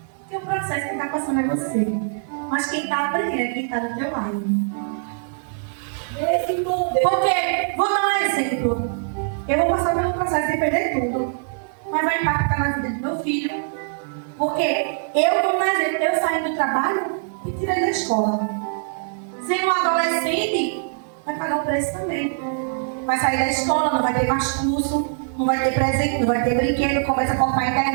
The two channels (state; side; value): silent; left; 64 dB below the other